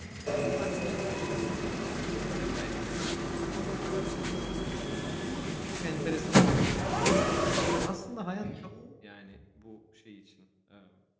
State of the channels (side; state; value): both; identical; correlation 1.00